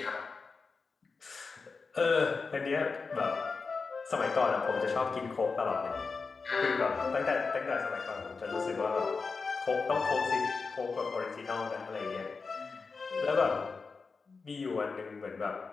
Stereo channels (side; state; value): right; quieter; 4.6 dB